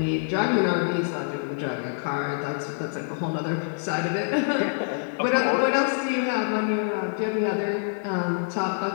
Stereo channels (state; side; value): silent; right; 61 dB below the other